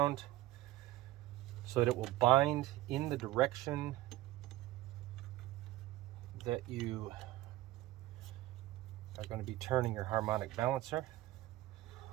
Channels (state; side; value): quieter; left; 16.5 dB